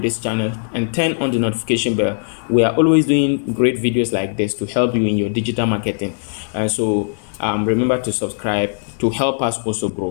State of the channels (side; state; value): right; silent; digital silence